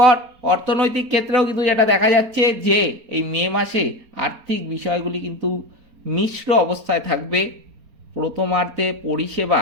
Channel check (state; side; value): late; left; 4.3 ms